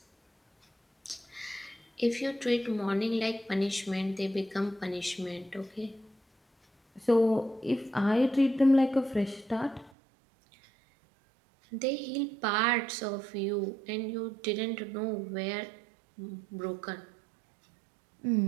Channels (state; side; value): drops out; left; at 9.9 s